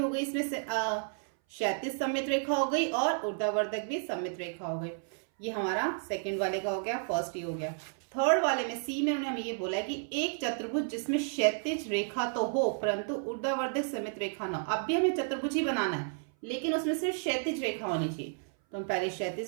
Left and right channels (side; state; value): left; silent; 57 dB below the other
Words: गई इसमें से, क्षैतिज सममित रेखा हो गई और ऊर्ध्वाधर भी सममित रेखा हो गई। ये हमारा सेकंड वाले का हो गया, फर्स्ट ही हो गया। थर्ड वाले में सी में उन्होंने हमें ये बोला है कि एक चतुर्भुज जिसमें क्षैतिज रेखा तो हो परंतु ऊर्ध्वाधर सममित रेखा ना हो। अब भी हमें चतुर्भुज ही बनाना है, लेकिन उसमें सिर्फ क्षैतिज रेखा होनी चाहिए। तो हम पहले